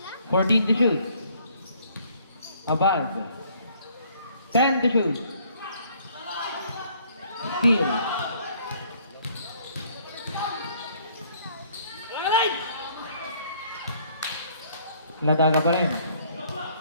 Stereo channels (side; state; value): both; inverted; correlation -0.62